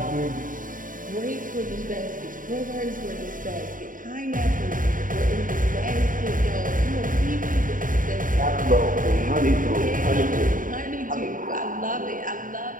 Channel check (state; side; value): late; left; 0.39 ms